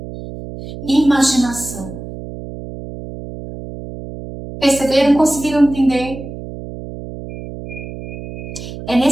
Imaginação. Perceberam? Conseguiram entender? É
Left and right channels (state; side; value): noise; right; hum, 11 dB below the sound